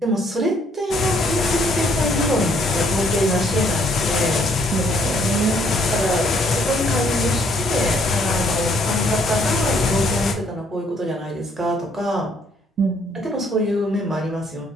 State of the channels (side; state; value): both; normal; correlation 0.66